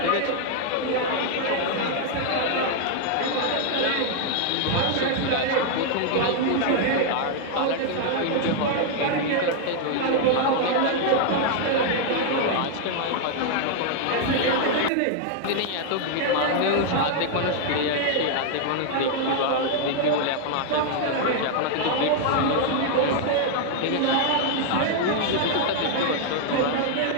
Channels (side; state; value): both; different; correlation 0.00